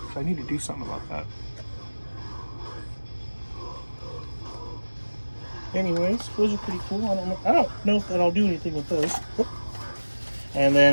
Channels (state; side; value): inverted; both; correlation -1.00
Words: I need to do something about that. Anyways, those are pretty cool. I don't know if that I'll do anything with those. Oop. And